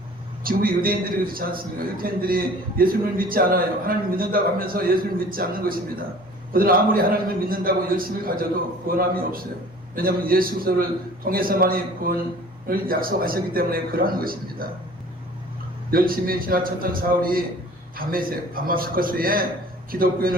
지금 유대인들이 그렇지 않습니까? 유대인들이 예수님을 믿지 않아요. 하나님 믿는다고 하면서 예수님을 믿지 않는 것입니다. 그들은 아무리 하나님을 믿는다고 열심을 가져도 구원함이 없어요. 왜냐하면 예수를 통해서만이 구원을 약속하셨기 때문에 그러한 것입니다. 열심히 지나쳤던 사울이 다마스커스에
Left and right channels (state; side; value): normal; both; correlation 0.48